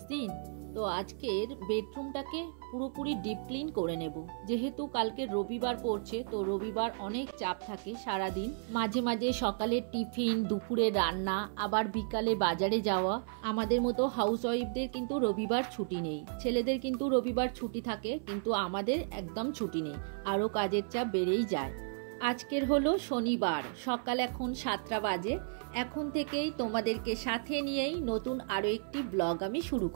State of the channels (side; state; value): left; silent; 55 dB below the other